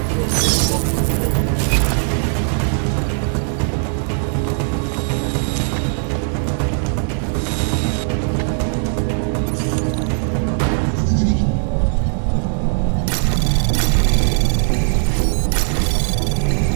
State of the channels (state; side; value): silent; left; 58 dB below the other